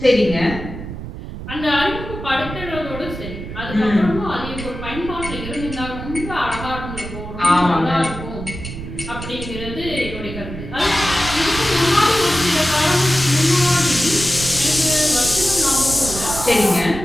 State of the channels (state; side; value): noise; right; rumble, 9 dB below the sound